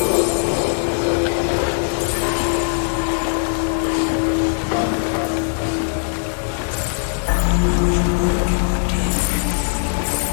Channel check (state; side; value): silent; right; digital silence